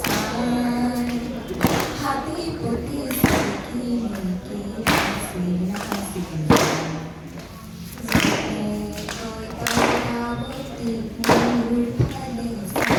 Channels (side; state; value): both; identical; correlation 1.00